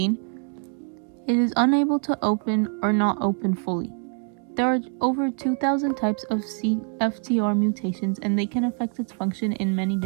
it is unable to open or not open fully. There are over 2,000 types of CFTR mutations, and they can affect its function in many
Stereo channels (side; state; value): left; quieter; 39.6 dB